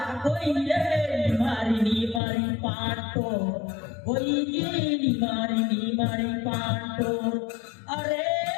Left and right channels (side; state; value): right; drops out; at 2.2 s